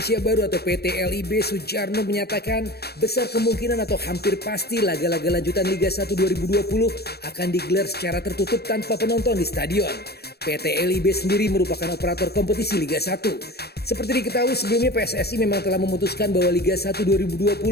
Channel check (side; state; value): right; late; 0.47 ms